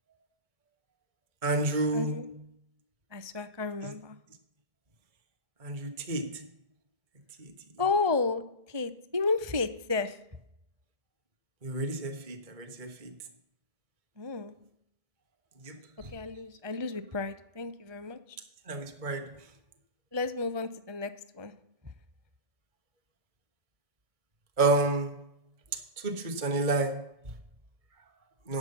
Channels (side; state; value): left; late; 1.6 ms